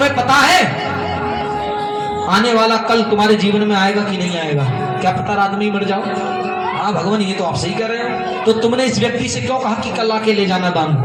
पता है आने वाला कल तुम्हारे जीवन में आएगा कि नहीं आएगा? क्या पता रात में ही मर जाओ। हाँ भगवान ये तो आप सही कह रहे हो। तो तुमने इस व्यक्ति से क्यों कहा कि कल आके ले जाना दान?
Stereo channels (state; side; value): identical; both; correlation 1.00